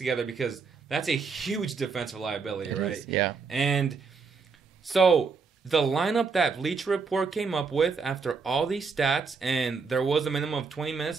because that's a huge defensive liability, right? Yeah. And so the lineup that Bleacher Report came up with after all these stats, and there was a minimum of 20 minutes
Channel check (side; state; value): left; quieter; 5.0 dB